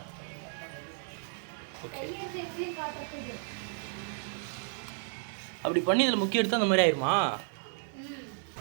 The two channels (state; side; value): silent; left; 56 dB below the other